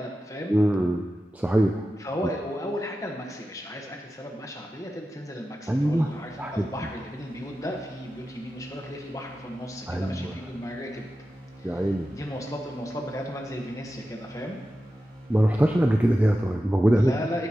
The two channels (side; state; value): both; normal; correlation 0.92